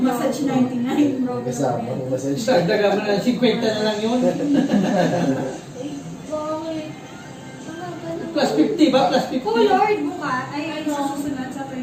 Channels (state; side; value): identical; both; correlation 1.00